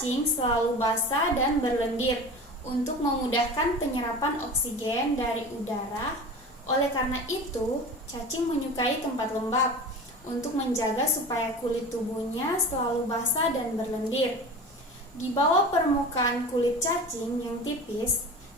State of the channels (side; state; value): both; normal; correlation 0.34